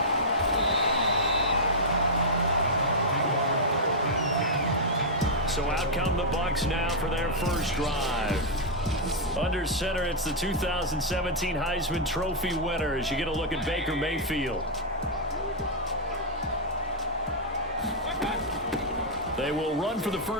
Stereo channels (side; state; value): both; normal; correlation -0.06